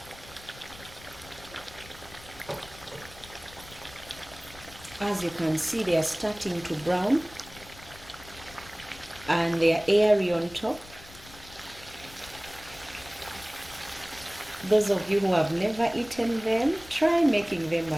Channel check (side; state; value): left; noise; rumble, 19 dB below the sound